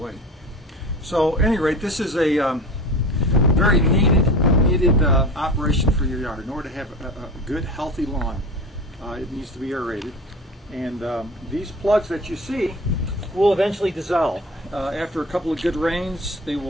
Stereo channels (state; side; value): normal; both; correlation 0.34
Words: So at any rate, this is a very needed operation for your yard. In order to have a good, healthy lawn, it needs to be aerated. And these plugs that you see will eventually dissolve. After a couple of good rains, they